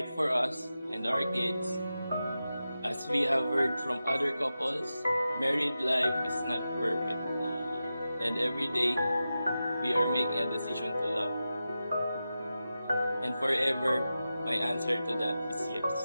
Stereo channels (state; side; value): inverted; both; correlation -0.92